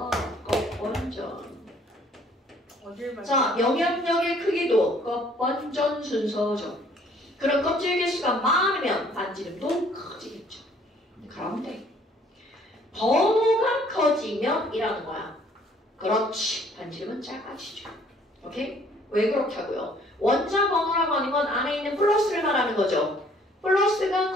껍번전. 어딜 봐. 자, 영향력의 크기도 껍번전 순서죠. 그럼 껍질 개수가 많으면 반지름도 커지겠죠. 그런데 번호가 커지면 이라는 거야. 그렇지. 반지름은 작아지죠. 오케이? 왜 그렇게 하고요? 원자 번호라고 하는 건 안에 있는 플러스를 말하는 거죠. 플러스가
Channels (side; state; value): both; normal; correlation 0.59